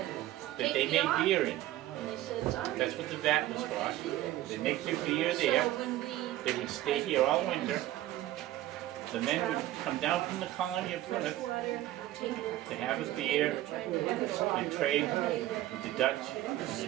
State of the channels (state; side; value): quieter; left; 14.8 dB